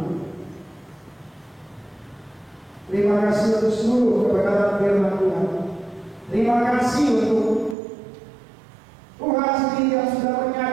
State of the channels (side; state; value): left; drops out; at 7.8 s